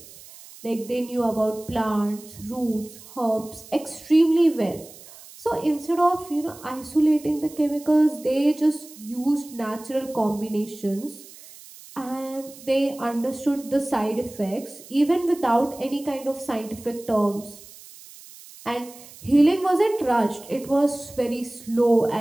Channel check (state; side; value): noise; right; hiss, 19 dB below the sound